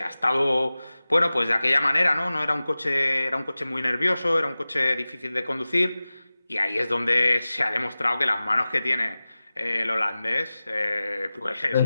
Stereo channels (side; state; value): both; inverted; correlation -0.97